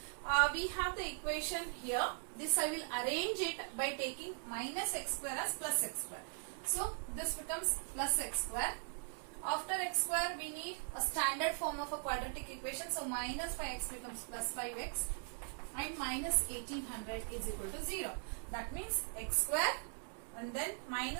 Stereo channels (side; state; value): left; silent; 51 dB below the other